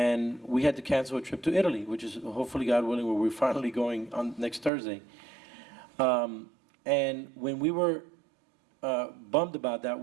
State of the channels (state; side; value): drops out; left; at 4.7 s